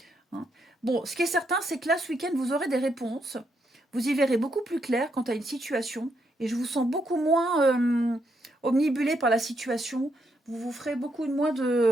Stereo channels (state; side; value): normal; both; correlation 0.78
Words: Hein. Bon, ce qui est certain, c'est que là, ce week-end, vous aurez des réponses. Vous y verrez beaucoup plus clair quant à une situation. Et je vous sens beaucoup moins omnibulé par la situation. Vous vous ferez beaucoup moins